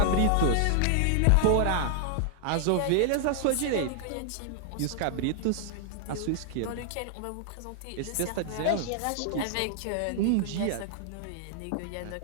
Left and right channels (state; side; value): different; both; correlation 0.00